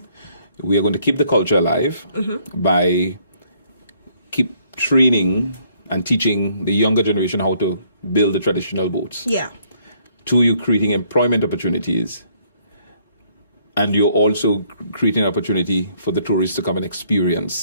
we are going to keep the culture alive by keep training and teaching the younger generation how to build the traditional boats. Two, you're creating employment opportunities. And you're also creating an opportunity for the tourists to come and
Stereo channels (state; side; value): inverted; both; correlation -0.66